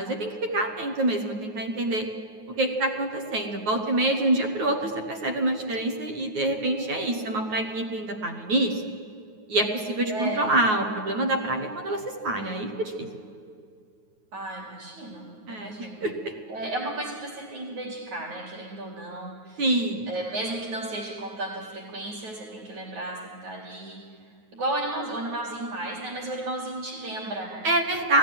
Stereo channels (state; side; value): late; left; 9.4 ms